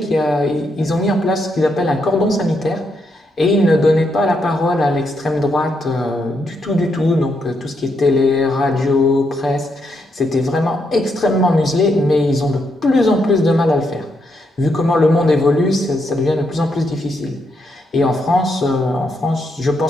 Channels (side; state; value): both; normal; correlation 0.79